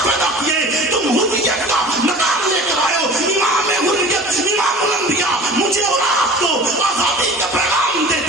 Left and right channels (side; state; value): both; normal; correlation 0.41